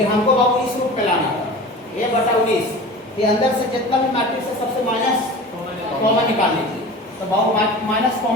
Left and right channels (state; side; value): normal; both; correlation 0.36